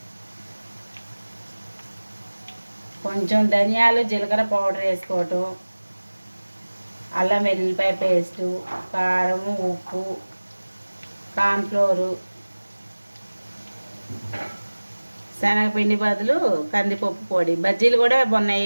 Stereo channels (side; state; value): both; inverted; correlation -1.00